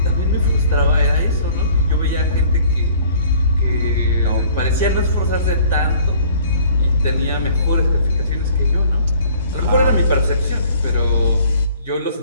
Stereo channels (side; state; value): both; inverted; correlation -0.54